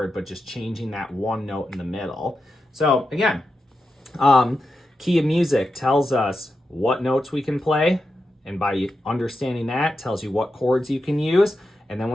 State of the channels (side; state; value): both; normal; correlation 0.88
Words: but just changing that one note in the middle. So again, key of music tells us what notes we can play, and by understanding that, tells you what chords you can use. And then